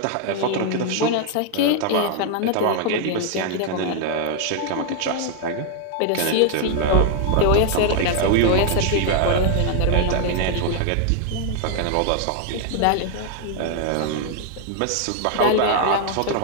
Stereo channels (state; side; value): different; both; correlation 0.00